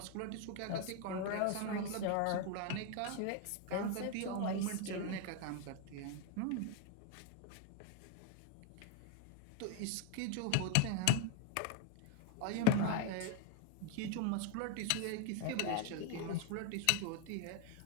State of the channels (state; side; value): different; both; correlation 0.01